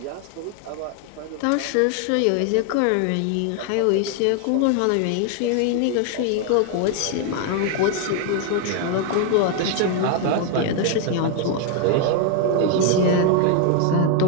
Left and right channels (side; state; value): both; different; correlation 0.01